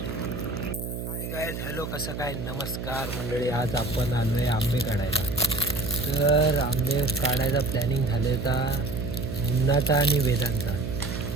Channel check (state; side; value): noise; right; hum, 6 dB below the sound